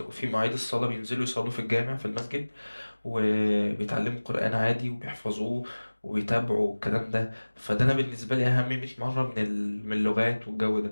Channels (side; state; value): both; inverted; correlation -1.00